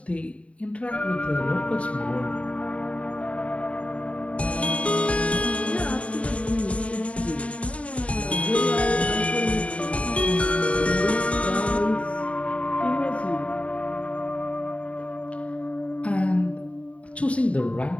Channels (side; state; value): right; late; 0.064 ms